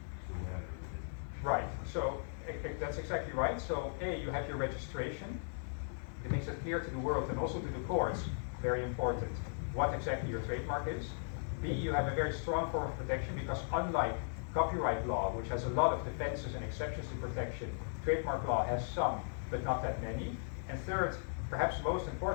do whatever with it. Right, so that's exactly right. So A, you have your registration. It makes it clear to the world and also to the courts, very important, what exactly your trademark is. B, you have a very strong form of protection because unlike copyright law, which has a lot of defenses and exceptions to protection, trademark law has some, but not that many. And third, perhaps most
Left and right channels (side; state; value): right; silent; digital silence